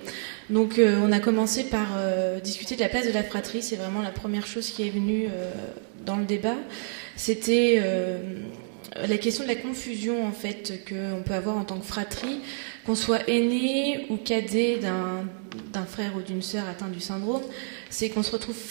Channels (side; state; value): left; silent; 59 dB below the other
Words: Donc on a commencé par discuter de la place de la fratrie, c'est vraiment la première chose qui est venue dans le débat. C'était la question de la confusion en fait qu'on peut avoir en tant que fratrie, qu'on soit aîné ou cadet d'un frère ou d'une sœur atteint du syndrome, c'est qu'on se retrouve